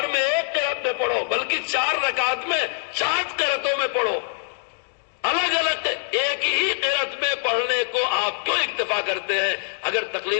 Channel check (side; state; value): right; silent; digital silence